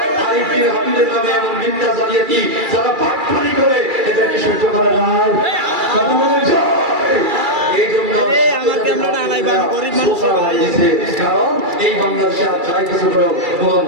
আরিফ বিন হাবিবের নামে এমন মিথ্যা জালিয়াতি যারা পাকপানি করে, এটাকে সহ্য করে না। কথা বলেন জয়। এই জন্য আমাকে আমরা আলাইবা গরিব মানুষ হয়েছে, কারণ এই বাংলাদেশে আর যাই কিছু হলো কোনো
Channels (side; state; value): left; late; 2.3 ms